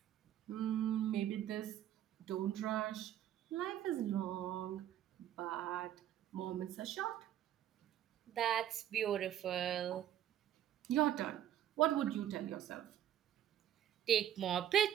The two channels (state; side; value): quieter; left; 11.3 dB